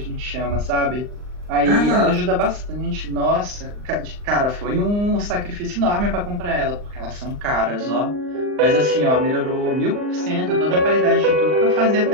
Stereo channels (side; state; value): left; late; 39 ms